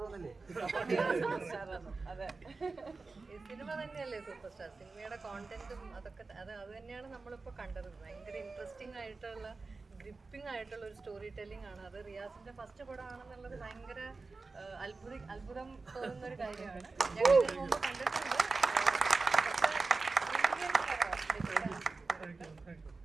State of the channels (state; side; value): quieter; left; 3.9 dB